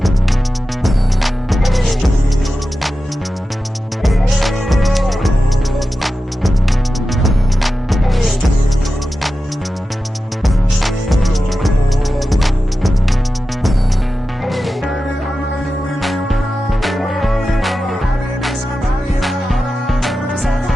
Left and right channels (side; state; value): both; normal; correlation 0.92